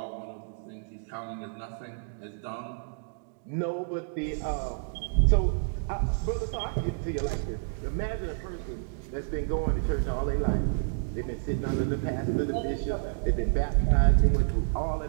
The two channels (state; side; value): silent; left; digital silence